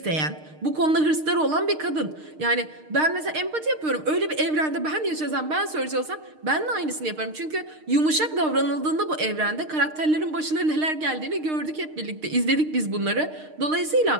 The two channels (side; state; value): left; late; 6.5 ms